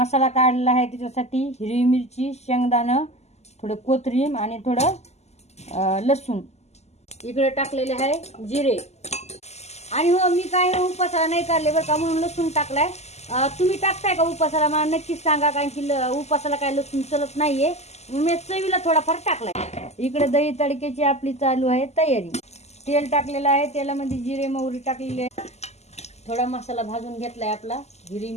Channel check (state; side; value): late; right; 0.32 ms